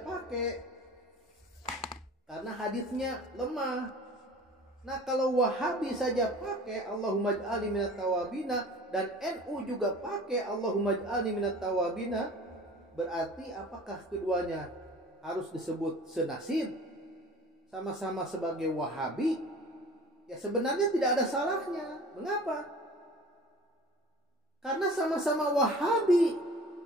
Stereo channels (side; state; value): both; normal; correlation 0.43